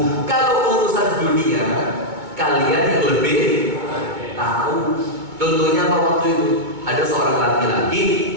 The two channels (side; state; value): left; late; 2.2 ms